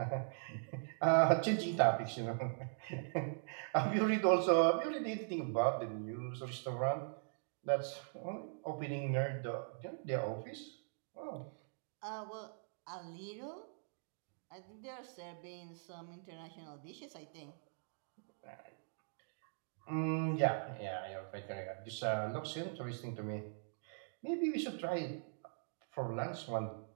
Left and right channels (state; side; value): silent; left; digital silence